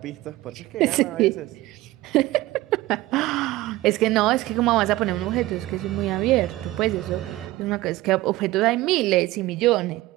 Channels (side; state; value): left; quieter; 17.7 dB